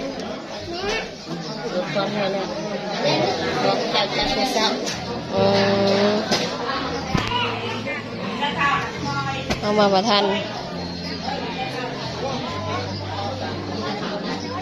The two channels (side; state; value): both; identical; correlation 1.00